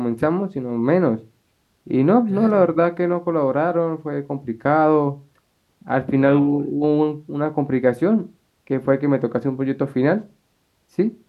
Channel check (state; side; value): identical; both; correlation 1.00